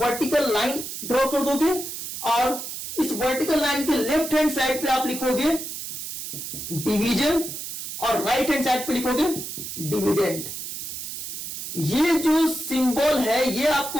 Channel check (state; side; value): noise; right; hiss, 7 dB below the sound